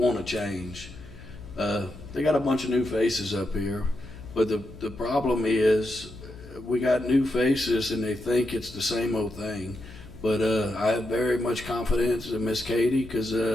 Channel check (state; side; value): noise; left; hum, 17 dB below the sound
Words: to change. They got a bunch of new faces up here, but the problem is we got new faces and they think it's the same old thing. But I have very much confidence in Miss Katie, because